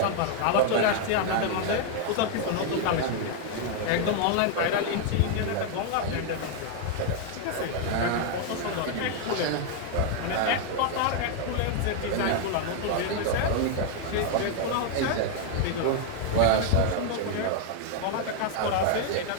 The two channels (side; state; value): both; different; correlation 0.00